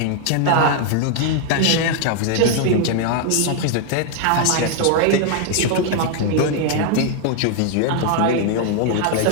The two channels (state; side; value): different; both; correlation 0.00